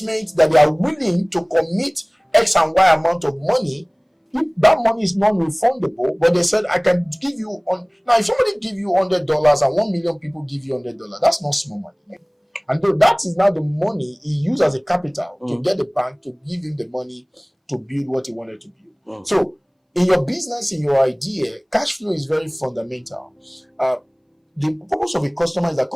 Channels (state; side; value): identical; both; correlation 1.00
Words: that they are willing to commit X and Y amount of money. If that money is non-refundable, but they said, I can give you now, if somebody give you $100 and 1 million people give you $100, that's not small money. And though that is now the money he used as a capital to get the bank to give him the money to build what he wanted to build. So in your business, in your idea, cash flow is very fundamental. The purpose of a customer is that